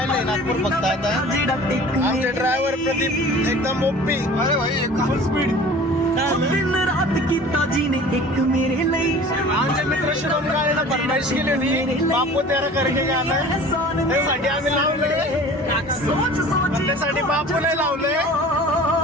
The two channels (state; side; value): normal; both; correlation 0.43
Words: नागपूर फक्त आता. आमचे ड्रायव्हर प्रदीप एकदम ओपी. अरे भाई फुल स्पीड. दिन रात कीता जीने एक मेरे लिए. आमचे मित्र शुभम काळेला फरमाईश केली होती बापू तेरा करके गाणं. त्यासाठी आम्ही लावलंय. सोच सोच त्यासाठी बापू नाही लावलंय.